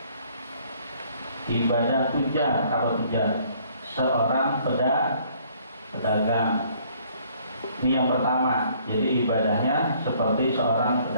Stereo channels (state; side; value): inverted; both; correlation -0.61